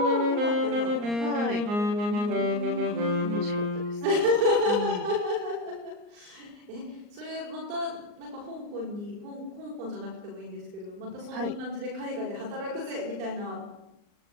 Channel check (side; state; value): left; late; 39 ms